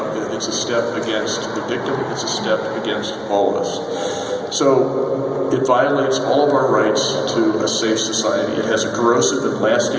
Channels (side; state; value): both; identical; correlation 1.00